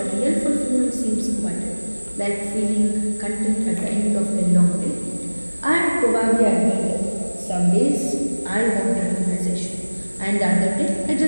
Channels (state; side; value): inverted; both; correlation -1.00